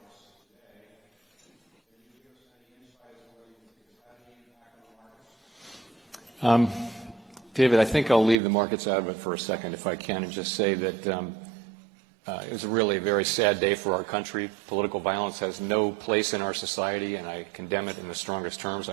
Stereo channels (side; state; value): left; drops out; at 8.4 s